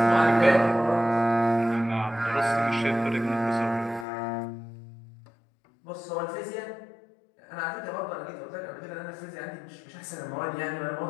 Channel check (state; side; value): drops out; right; at 4.0 s